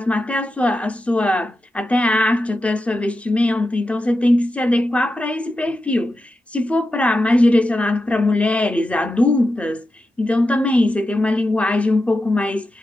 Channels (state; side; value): normal; both; correlation 0.90